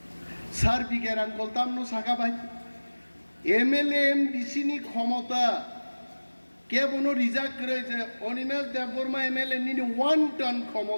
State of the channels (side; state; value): both; inverted; correlation -1.00